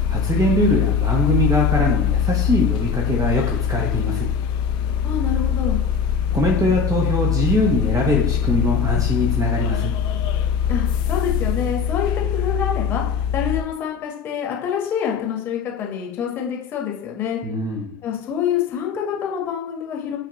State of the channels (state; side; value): quieter; right; 5.2 dB